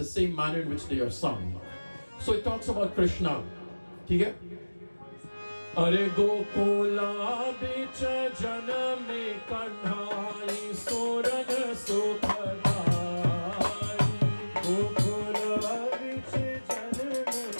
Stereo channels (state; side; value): inverted; both; correlation -1.00